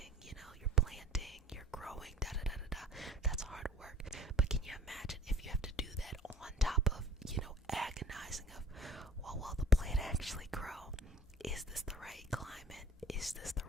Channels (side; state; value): both; normal; correlation 0.47